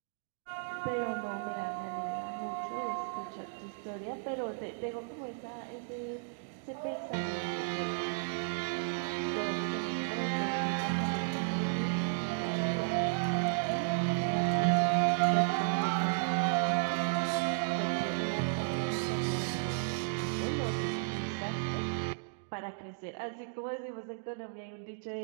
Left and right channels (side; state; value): left; silent; digital silence